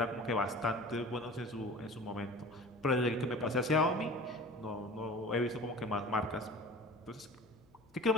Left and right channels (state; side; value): noise; left; hum, 30 dB below the sound